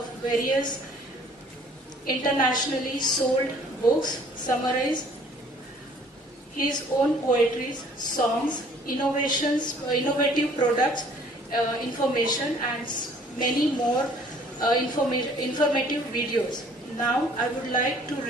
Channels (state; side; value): normal; both; correlation 0.56